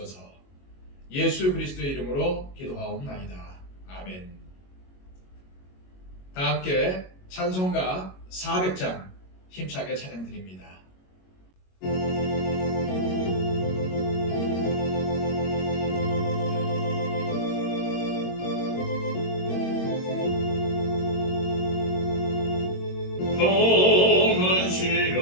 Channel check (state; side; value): late; right; 22 ms